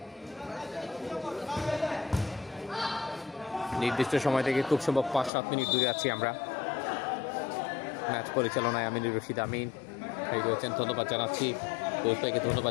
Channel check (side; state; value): right; drops out; at 5.3 s